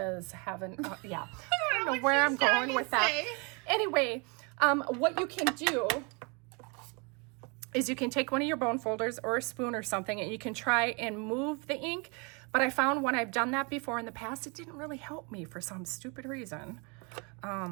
having, yeah. I don't know where I'm going with that. Anyway, what you can do is you can take one of your bone folders or a spoon or something and you can try and move the ink. But I found when I've done that before in the past, it didn't really help me for some stupid reason.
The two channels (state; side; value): quieter; left; 31.9 dB